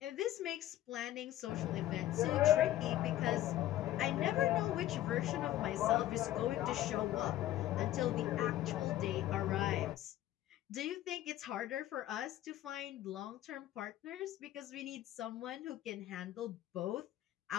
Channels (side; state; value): right; quieter; 13.8 dB